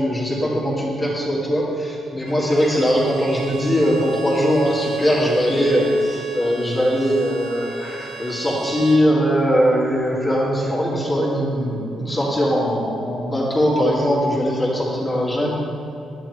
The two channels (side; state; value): both; normal; correlation 0.85